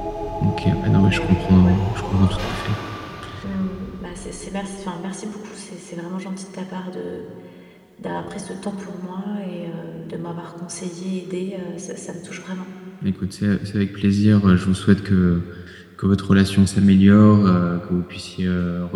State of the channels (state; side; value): identical; both; correlation 1.00